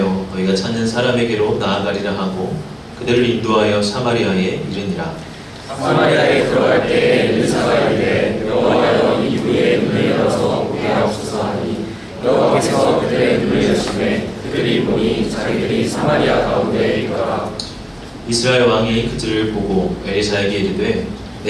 너희가 찾는 사람에게로 나아가리라 하고 그들을 인도하여 사마리아에 이르니라. 사마리아에 들어갈 때 엘리사가 이르되 여호와여 이 우리의 눈을 열어서 보게 하옵소서 하니 여호와께서 그들의 눈을 여심해 그들이 보니 자기들이 사마리아 가운데에 있더라. 이스라엘 왕이 그들을 보고 엘리사에게 이르되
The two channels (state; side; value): identical; both; correlation 1.00